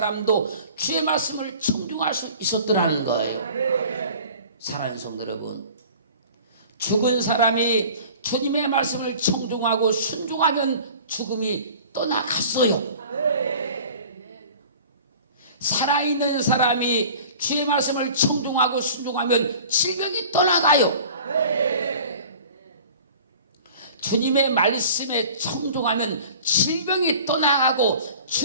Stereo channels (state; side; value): inverted; both; correlation -0.44